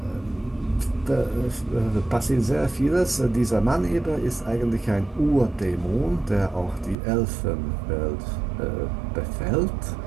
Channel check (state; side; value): drops out; left; at 7.0 s